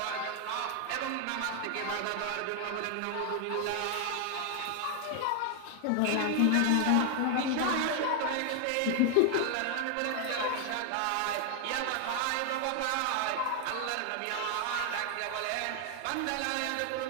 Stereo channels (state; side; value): different; both; correlation 0.00